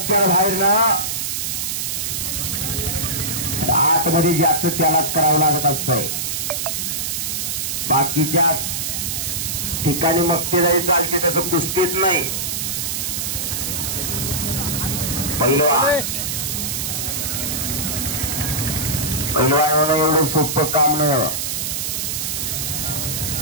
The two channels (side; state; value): right; noise; hiss, 2 dB below the sound